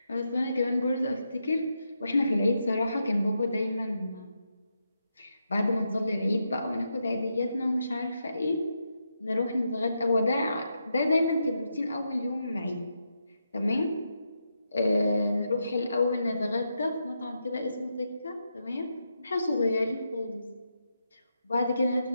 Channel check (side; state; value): both; inverted; correlation -0.84